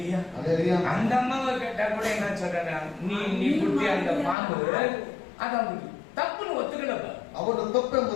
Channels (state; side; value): drops out; right; at 4.4 s